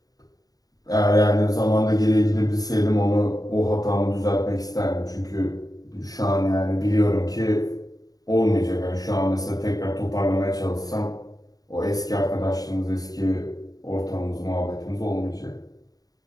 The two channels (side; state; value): right; late; 0.18 ms